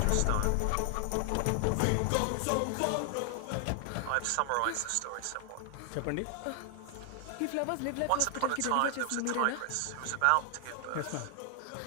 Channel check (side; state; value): both; different; correlation 0.00